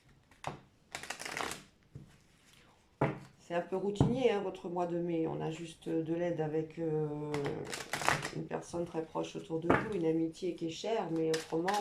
C'est un peu routinier, hein, votre mois de mai. On a juste de l'aide avec une personne très proche autour de vous, une amitié qui est chère, mais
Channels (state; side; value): identical; both; correlation 1.00